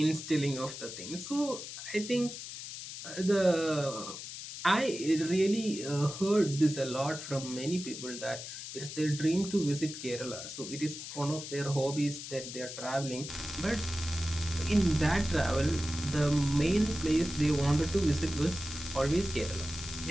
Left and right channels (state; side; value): noise; left; hiss, 9 dB below the sound